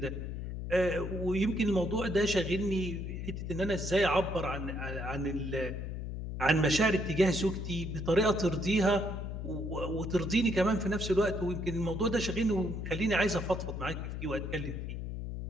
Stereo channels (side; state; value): left; noise; hum, 5 dB below the sound